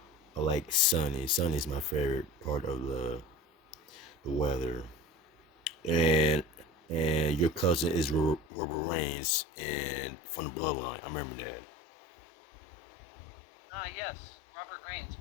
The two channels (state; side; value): drops out; right; at 8.5 s